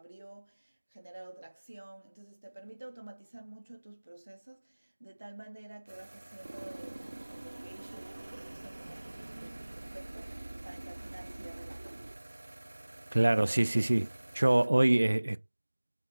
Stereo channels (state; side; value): inverted; both; correlation -1.00